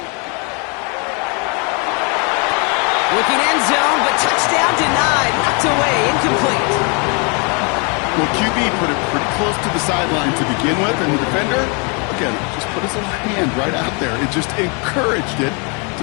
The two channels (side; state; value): right; quieter; 34.4 dB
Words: Looking end zone, but touchdown denied. Knocked away, incomplete. Well, QB put it pretty close to the sideline to begin with, and the defender, again, just put his little hand right out there. It just encouraged it to